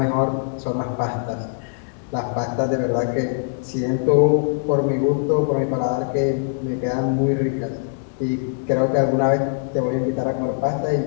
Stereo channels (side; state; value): right; silent; digital silence